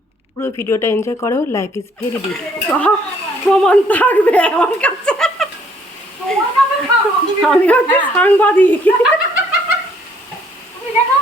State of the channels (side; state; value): both; normal; correlation 0.64